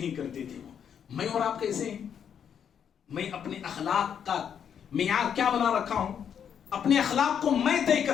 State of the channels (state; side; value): quieter; right; 8.2 dB